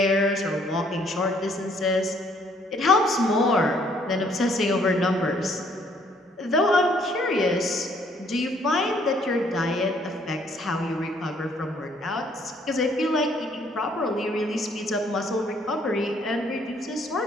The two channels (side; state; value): both; normal; correlation 0.65